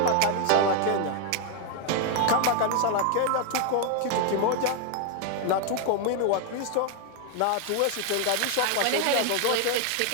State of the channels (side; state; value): both; different; correlation 0.00